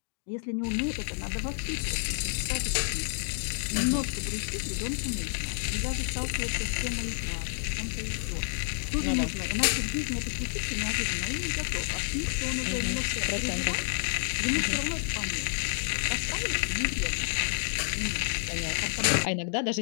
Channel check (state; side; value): silent; right; digital silence